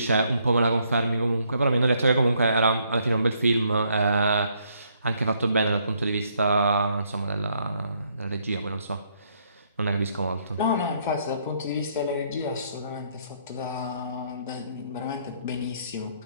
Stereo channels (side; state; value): both; inverted; correlation -0.70